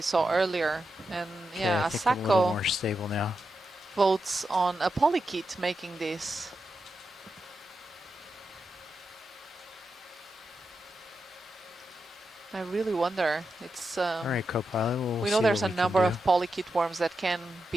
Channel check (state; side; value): normal; both; correlation 0.88